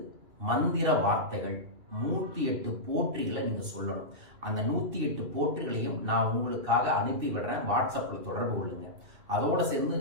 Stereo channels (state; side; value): late; left; 2.6 ms